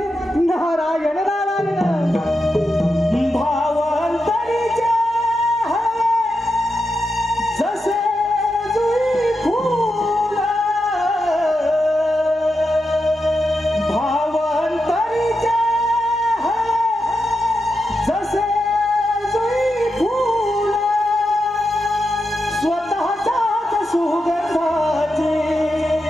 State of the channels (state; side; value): normal; both; correlation 0.87